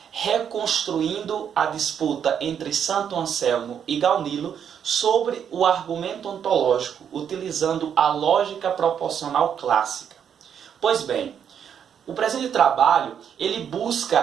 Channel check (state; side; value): quieter; left; 8.3 dB